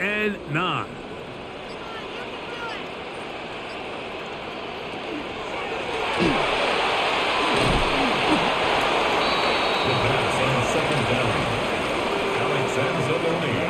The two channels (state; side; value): identical; both; correlation 1.00